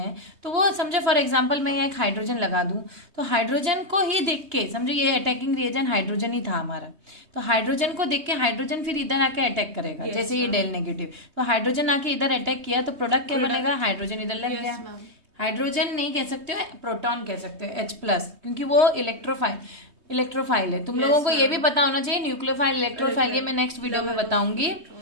तो वो समझो फॉर एग्जांपल मैं यहाँ एक हाइड्रोजन लगा दूं, तो हाइड्रोजन को ही देख के समझो ये अटैकिंग रिएजेंट हाइड्रोजन ही था हमारा, तो हाइड्रोजन को देख के हाइड्रोजन फिर इधर आके अटैक करेगा, जैसे ये डेल नेगेटिव, तो हाइड्रोजन आके इधर अटैक किया तो प्रोडक्ट क्या बनेगा, हाइड्रोजन इधर लग गया। हाइड्रोजन नहीं कह सकते हो, प्रोटॉन कह सकते हो, H+, क्योंकि वो इलेक्ट्रोफाइल है। तुम लोगों को ये भी पता होना चाहिए न्यूक्लियोफाइल इलेक्ट्रोफाइल, ये मैं नेक्स्ट वीडियो में बताऊंगी,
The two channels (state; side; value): late; left; 3.2 ms